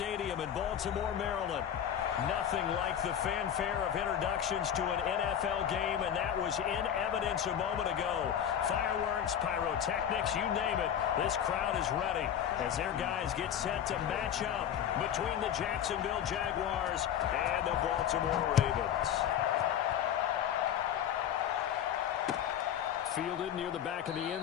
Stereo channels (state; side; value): quieter; right; 9.5 dB